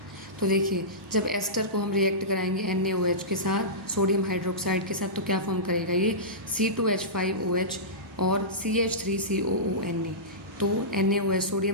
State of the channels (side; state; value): both; normal; correlation -0.18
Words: तो देखिए जब एस्टर को हम रिएक्ट कराएंगे NaOH के साथ, सोडियम हाइड्रोक्साइड के साथ, तो क्या फॉर्म करेगा ये? C2H5OH और CH3COONa। तो NaOH